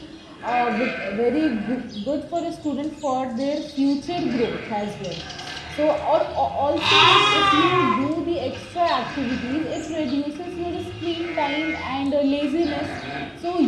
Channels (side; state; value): both; identical; correlation 1.00